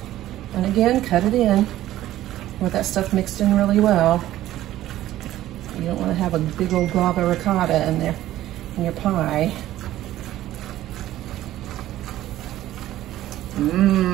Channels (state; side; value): quieter; left; 14.1 dB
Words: And again, cut it in with that stuff mixed in really well. You don't want to have a big old glob of ricotta in there in your pie.